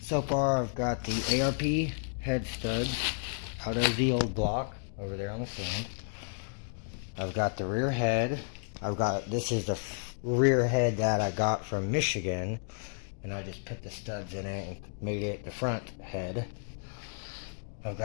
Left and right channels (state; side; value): silent; right; digital silence